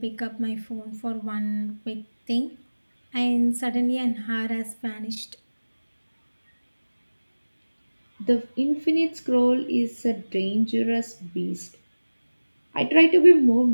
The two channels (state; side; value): inverted; both; correlation -1.00